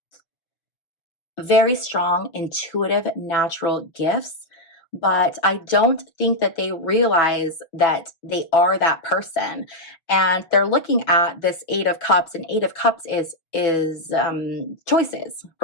strong, intuitive, natural gifts, but I don't think that they realize that they are that person. And they're looking at this Eight of Cups, and Eight of Cups is choices,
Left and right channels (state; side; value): late; right; 6.1 ms